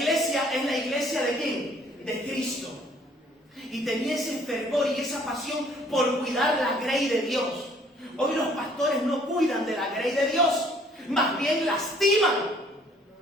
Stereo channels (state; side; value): normal; both; correlation 0.60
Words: es la iglesia ¿de quién? De Cristo. Y tenía ese fervor y esa pasión por cuidar la grey de Dios. Hoy los pastores no cuidan de la grey de Dios, más bien lastiman.